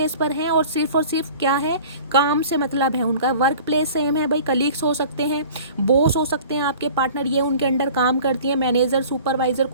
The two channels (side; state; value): both; inverted; correlation -0.44